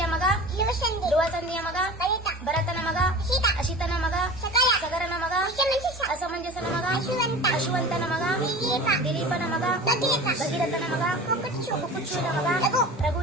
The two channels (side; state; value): both; normal; correlation 0.36